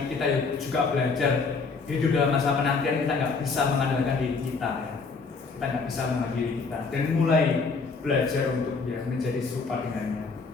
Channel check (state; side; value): quieter; right; 4.5 dB